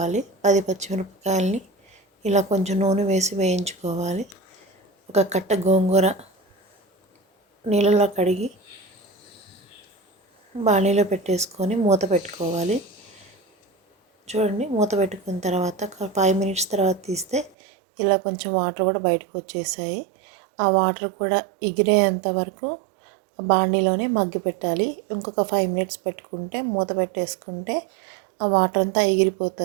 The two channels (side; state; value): left; drops out; at 17.5 s